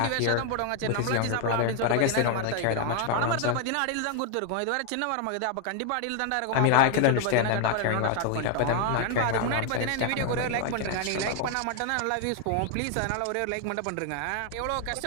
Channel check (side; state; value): both; different; correlation 0.00